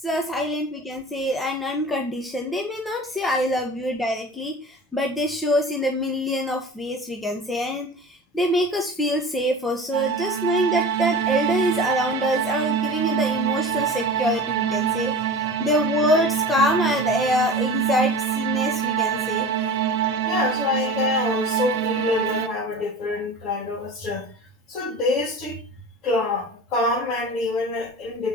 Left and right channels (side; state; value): both; normal; correlation 0.36